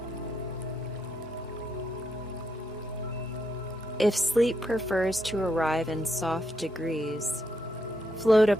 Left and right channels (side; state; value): both; normal; correlation 0.80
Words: If sleep prefers to arrive in soft degrees, float